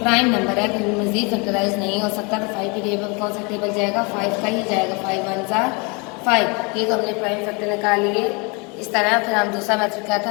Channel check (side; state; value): right; quieter; 30.4 dB